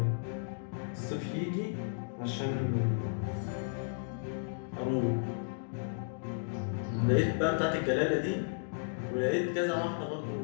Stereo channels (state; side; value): silent; right; digital silence